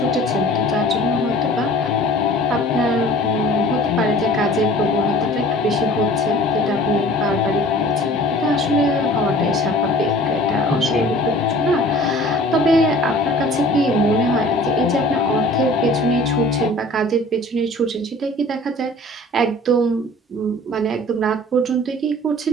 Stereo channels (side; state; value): both; normal; correlation 0.46